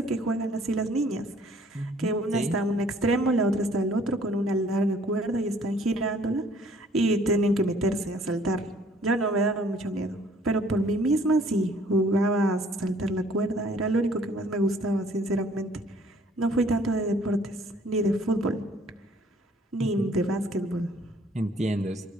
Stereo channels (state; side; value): normal; both; correlation 0.58